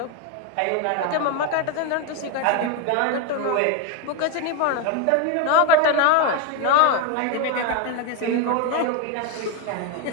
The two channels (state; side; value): different; both; correlation 0.02